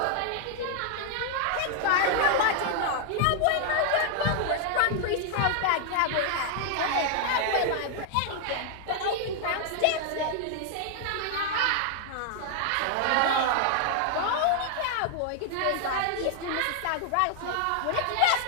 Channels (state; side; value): different; both; correlation 0.00